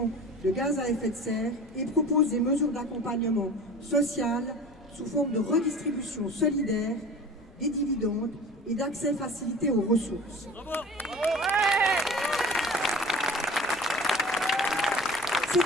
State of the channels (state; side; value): normal; both; correlation 0.39